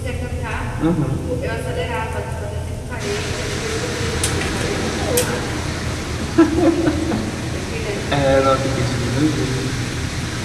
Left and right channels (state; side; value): identical; both; correlation 1.00